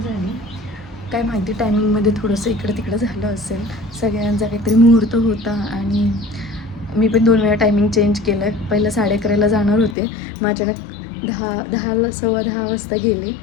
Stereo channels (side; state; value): right; drops out; at 10.0 s